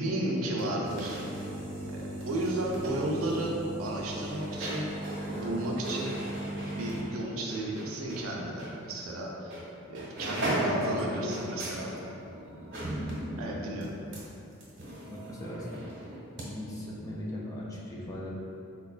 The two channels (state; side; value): normal; both; correlation 0.41